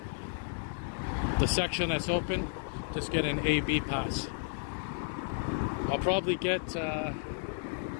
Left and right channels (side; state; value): right; silent; digital silence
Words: The section that's open, just get an AB pass. I'll probably